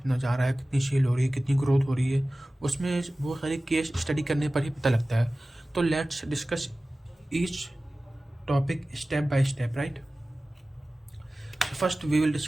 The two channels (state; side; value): normal; both; correlation 0.97